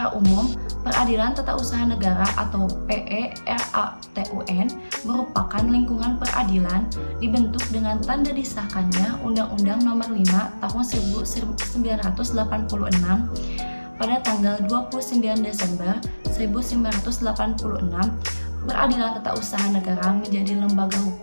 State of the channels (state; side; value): inverted; both; correlation -1.00